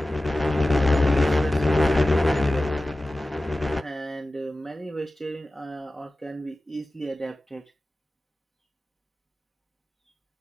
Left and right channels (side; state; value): both; normal; correlation 0.96